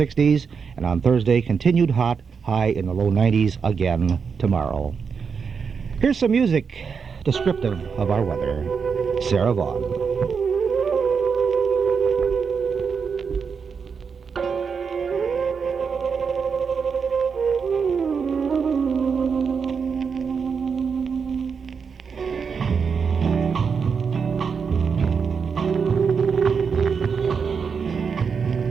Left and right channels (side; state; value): left; quieter; 5.9 dB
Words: And on Thursday, continued hot, high in the low 90s again tomorrow. Here's some music descriptive of our weather. Sarah Vaughan.